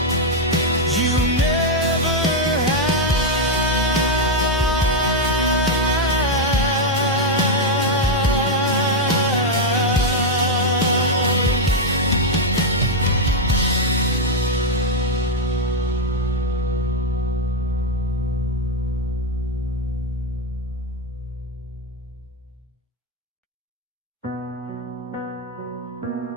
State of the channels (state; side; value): normal; both; correlation 0.02